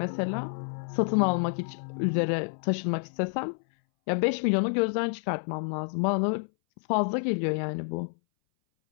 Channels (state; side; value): silent; right; 59 dB below the other